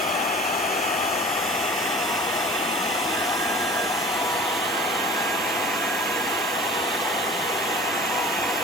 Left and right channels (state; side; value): normal; both; correlation 0.43